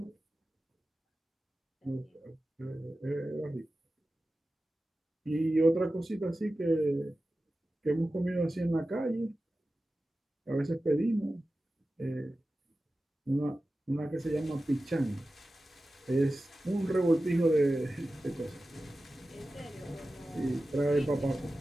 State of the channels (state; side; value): normal; both; correlation 0.94